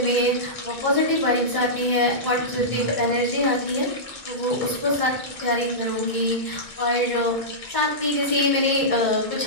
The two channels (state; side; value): late; left; 2.2 ms